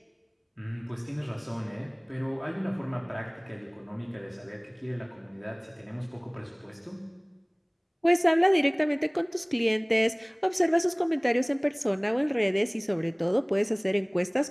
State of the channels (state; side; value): identical; both; correlation 1.00